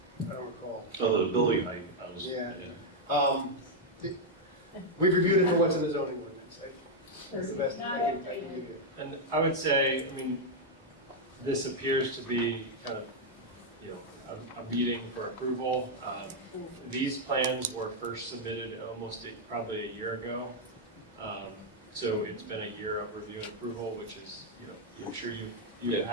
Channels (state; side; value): normal; both; correlation -0.01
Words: recall. Oh, the building height, I was, yeah. We've reviewed it for what's in the zoning ordinance. That's the best I can do. And I would say, I mean, this appears to be kind of, you know, a meeting for approval. These plans were first submitted probably a year ago. So it's been a year of review and approval, which is, you know, I'm sure you've